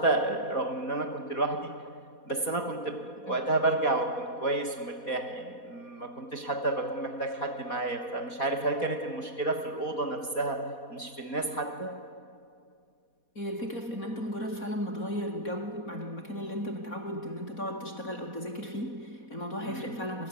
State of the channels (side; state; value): right; late; 4.2 ms